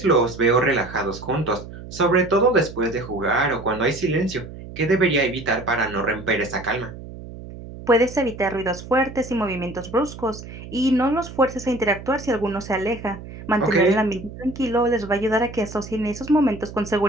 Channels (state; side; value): noise; right; hum, 13 dB below the sound